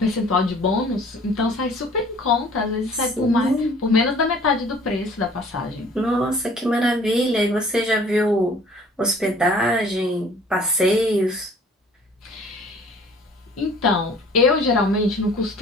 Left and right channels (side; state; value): both; normal; correlation 0.52